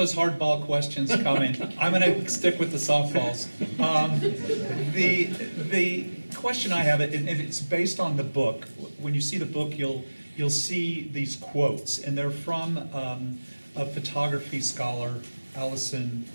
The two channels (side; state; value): both; inverted; correlation -1.00